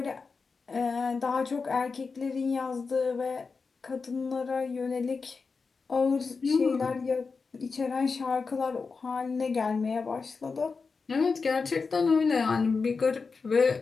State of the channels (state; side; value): quieter; right; 4.7 dB